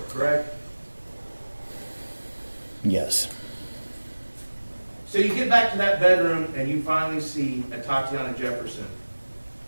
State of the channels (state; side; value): inverted; both; correlation -1.00